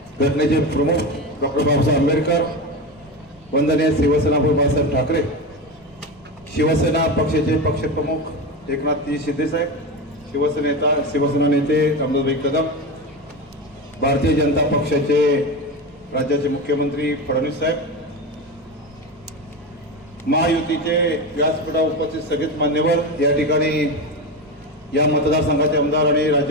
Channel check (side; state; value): right; noise; rumble, 28 dB below the sound